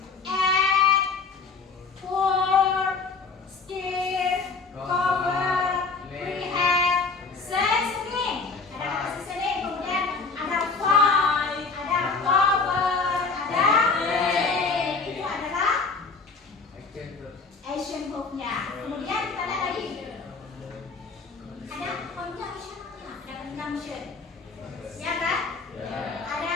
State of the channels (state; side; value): quieter; right; 4.4 dB